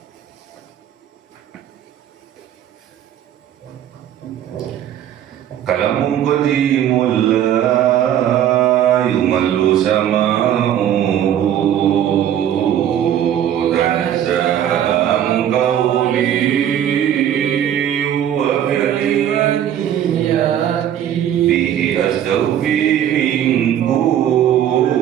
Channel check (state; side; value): quieter; left; 10.4 dB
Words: Kalamun qadimun la yumallu sama'uhu tanazzaha an qawli wa kalimati bihi astawfi min